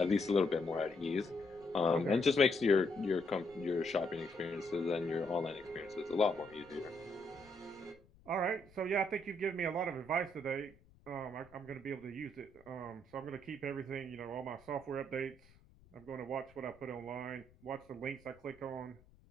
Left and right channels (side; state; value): left; noise; rumble, 27 dB below the sound